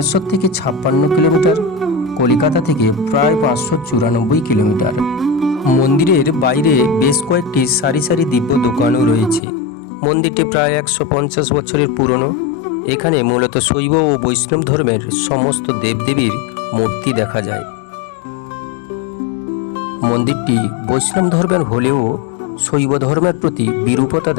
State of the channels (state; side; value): drops out; right; at 9.4 s